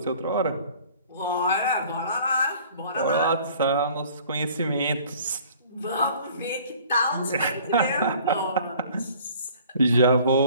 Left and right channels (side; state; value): both; inverted; correlation -0.52